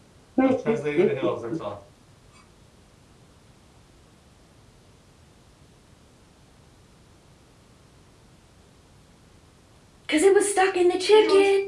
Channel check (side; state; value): both; identical; correlation 1.00